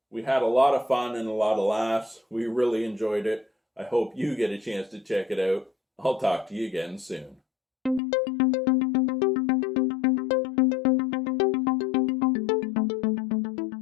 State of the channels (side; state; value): right; drops out; at 8.0 s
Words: We had a lot of fun and a lot of laughs. We really enjoyed it. I hope you get a chance to check it out. I'll talk to you again soon.